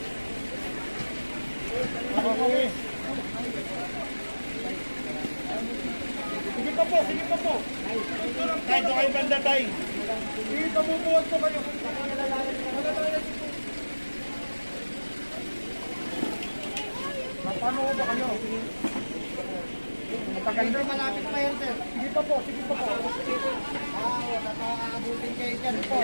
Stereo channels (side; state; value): both; inverted; correlation -1.00